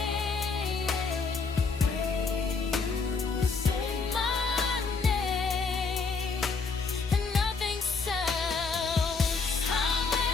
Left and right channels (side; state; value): right; quieter; 4.5 dB